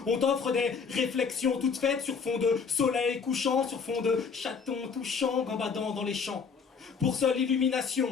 On t'offre des réflexions toutes faites sur fond de soleil couchant, sur fond de chatons touchants gambadant dans les champs. Pour seule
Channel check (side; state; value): right; quieter; 5.7 dB